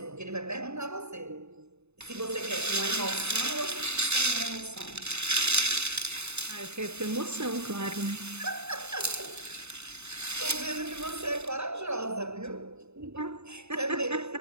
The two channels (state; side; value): late; left; 0.81 ms